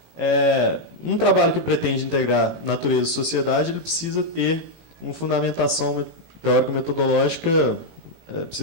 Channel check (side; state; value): left; late; 18 ms